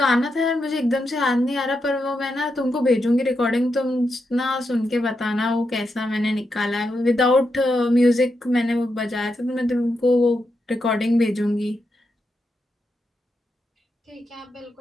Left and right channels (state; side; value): normal; both; correlation 0.85